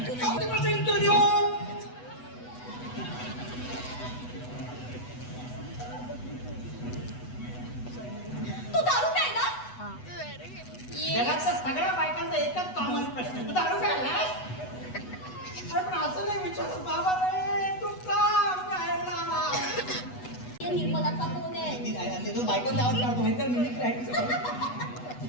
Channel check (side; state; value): right; late; 8.1 ms